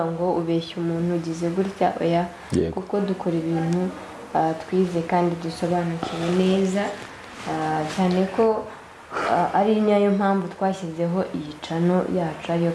ngo ubeshye umuntu ugize gutya oya kuko dukora ibintu twize kandi dusobanukiwe neza cyane ko ari nayo mpamvu twashyizeho iyi cano yacu ariyo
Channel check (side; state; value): both; identical; correlation 1.00